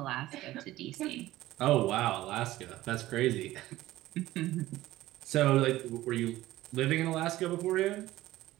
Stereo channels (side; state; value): left; quieter; 16.0 dB